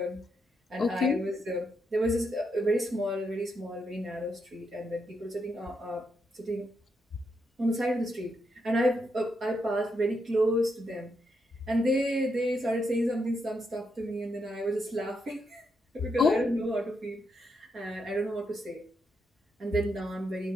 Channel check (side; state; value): both; normal; correlation 0.81